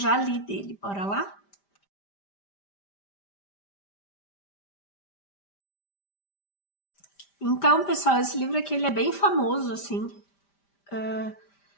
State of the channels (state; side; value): late; right; 5.1 ms